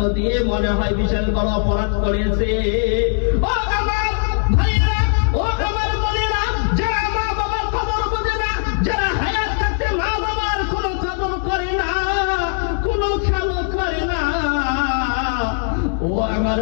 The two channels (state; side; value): silent; right; digital silence